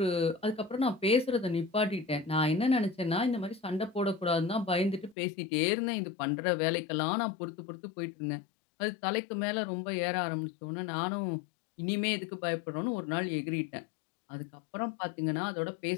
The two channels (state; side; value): drops out; right; at 5.2 s